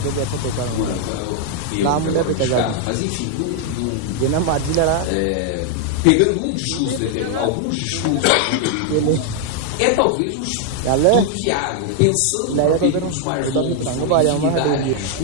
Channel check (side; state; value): both; different; correlation 0.00